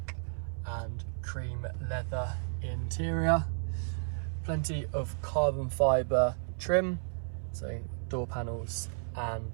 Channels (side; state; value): left; silent; 55 dB below the other